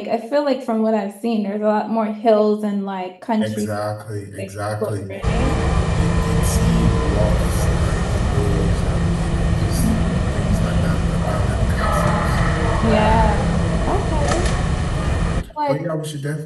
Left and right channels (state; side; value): identical; both; correlation 1.00